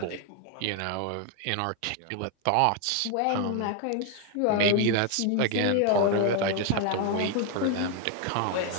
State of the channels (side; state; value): both; different; correlation 0.01